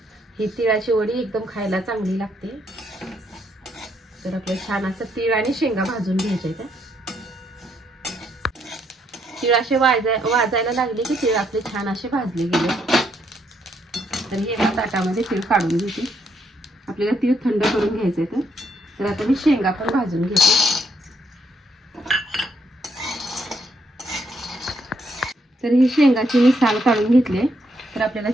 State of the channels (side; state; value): both; normal; correlation 0.74